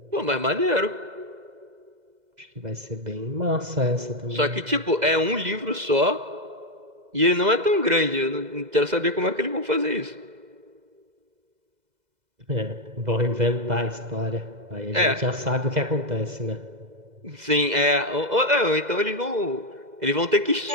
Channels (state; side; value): late; left; 2.0 ms